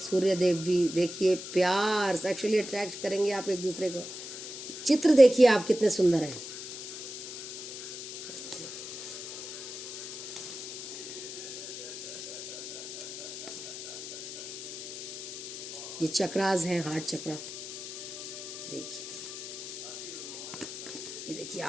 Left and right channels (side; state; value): left; noise; hiss, 9 dB below the sound